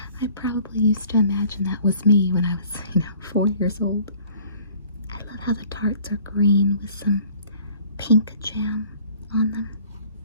I probably used to imagine that was me when I was, 4 years old. I love how the tarts are green with some pink jam on them.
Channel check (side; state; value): both; inverted; correlation -0.53